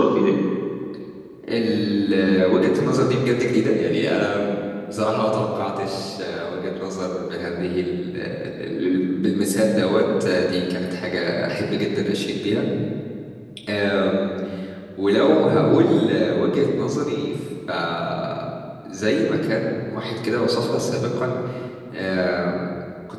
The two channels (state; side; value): identical; both; correlation 1.00